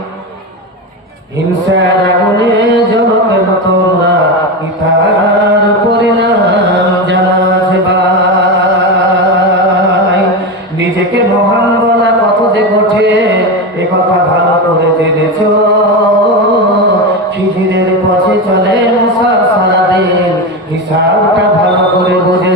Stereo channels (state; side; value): normal; both; correlation 0.17